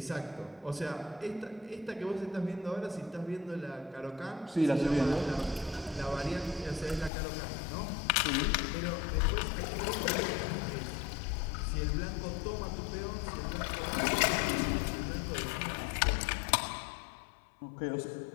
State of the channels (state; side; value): drops out; right; at 7.1 s